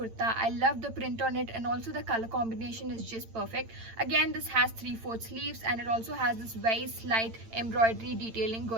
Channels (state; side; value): late; left; 8.9 ms